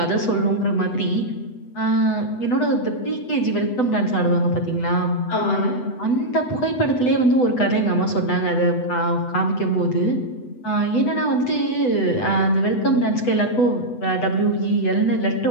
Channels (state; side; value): late; right; 8.0 ms